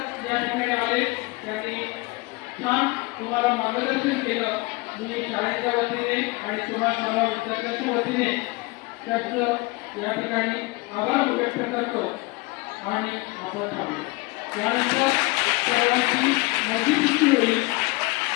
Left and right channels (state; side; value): quieter; right; 24.6 dB